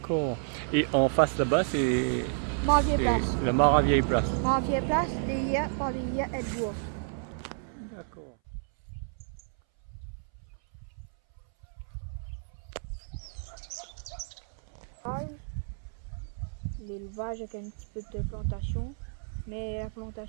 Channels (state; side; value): silent; left; 57 dB below the other